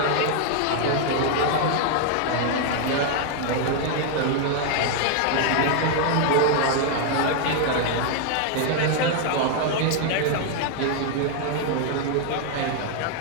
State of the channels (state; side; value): different; both; correlation 0.00